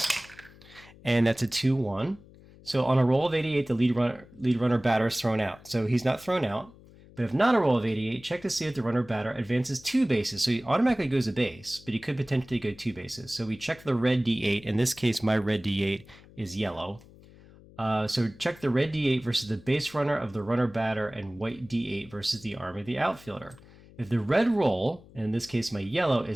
and that's a 2-1. So on a roll of 88, the lead runner batter is thrown out. So he's not thrown out. But if not a roll of 88, check to see if the runner batter advances 2 bases. So he automatically goes a base, but he could potentially go 2 bases. So we check the red D8. In this case, my red D8 is yellow. So check the red D8 versus the base runner of the runner batter, and white D8 versus the arm of the outfielder. If the red roll, and in this case my yellow,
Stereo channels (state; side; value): noise; left; hum, 23 dB below the sound